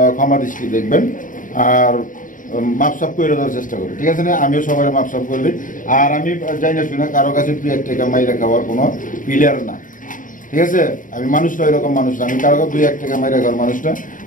ক্ষমা দৃষ্টি দেখবেন আর মাপসাপ করে দেওয়ার চেষ্টা করি, ঠিক আছে না? আমিও সবাই মাপসাপ করে দিই। আর আমি যাই না শুনে কারো কাছে এক টাকা মাইরা খাওয়ার কোনো প্লেয়ার না, ঠিক আছে? আমি মানুষটা এরকম মানুষ না, আমি কারো 2-1 টাকা মাইরা খাওয়ার মানুষ না।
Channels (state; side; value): late; right; 0.38 ms